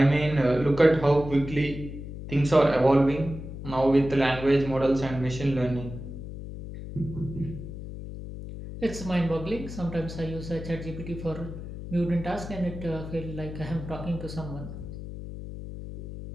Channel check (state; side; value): noise; left; hum, 10 dB below the sound